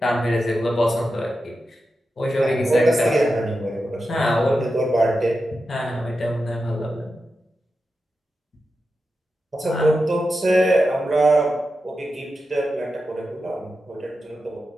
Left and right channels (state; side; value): normal; both; correlation 0.90